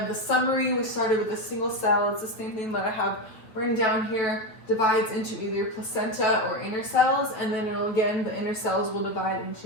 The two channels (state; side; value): late; right; 8.8 ms